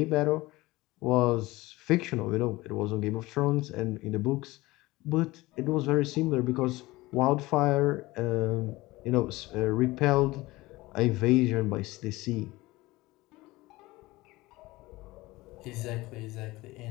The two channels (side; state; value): right; quieter; 20.0 dB